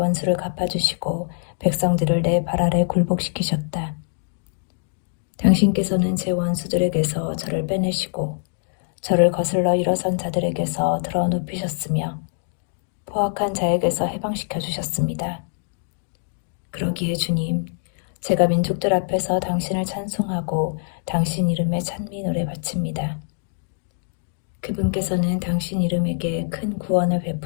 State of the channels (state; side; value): silent; right; digital silence